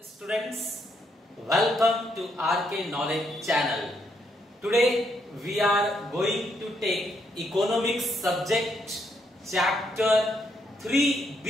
welcome to RK Knowledge channel. Today we are going to take economics subject chapter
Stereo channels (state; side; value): normal; both; correlation 0.75